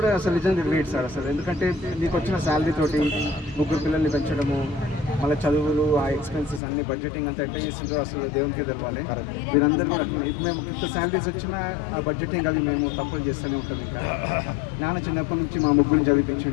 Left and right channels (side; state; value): right; drops out; at 6.6 s